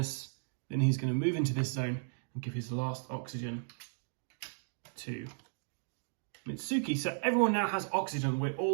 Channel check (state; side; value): silent; left; digital silence